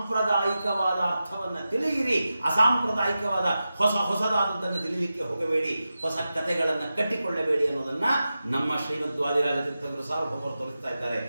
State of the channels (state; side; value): inverted; both; correlation -0.92